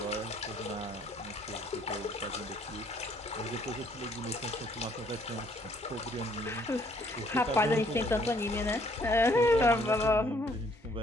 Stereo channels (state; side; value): normal; both; correlation 0.64